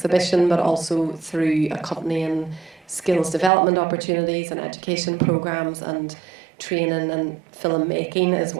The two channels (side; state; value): left; drops out; at 3.5 s